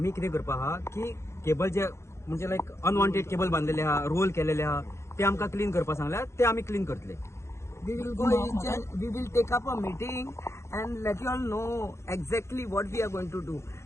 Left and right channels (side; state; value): right; late; 0.13 ms